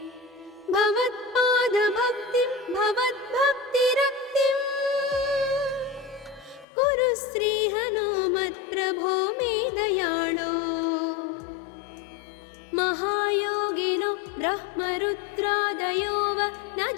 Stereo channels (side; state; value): right; drops out; at 6.7 s